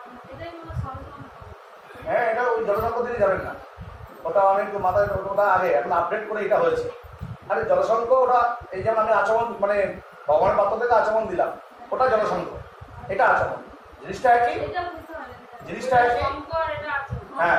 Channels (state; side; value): identical; both; correlation 1.00